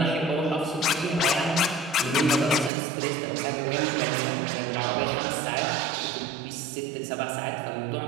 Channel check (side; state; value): left; drops out; at 2.7 s